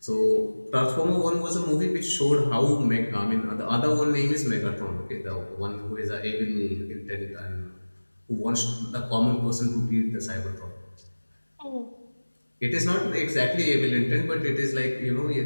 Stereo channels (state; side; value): inverted; both; correlation -1.00